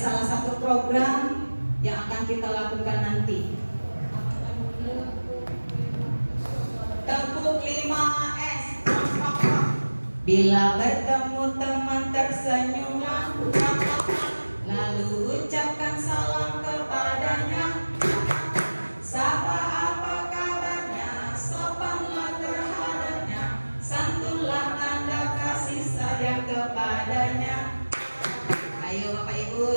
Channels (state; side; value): inverted; both; correlation -1.00